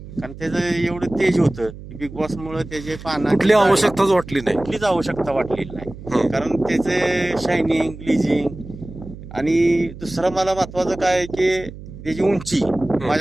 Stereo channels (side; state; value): right; noise; hum, 14 dB below the sound